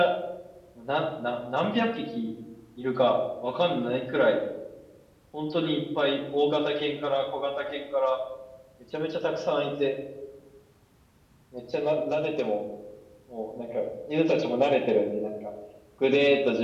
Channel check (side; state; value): both; identical; correlation 1.00